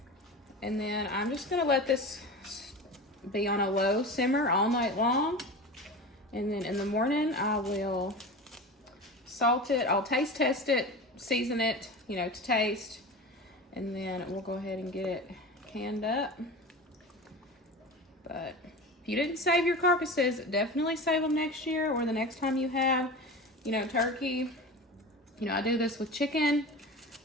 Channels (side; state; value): both; normal; correlation 0.31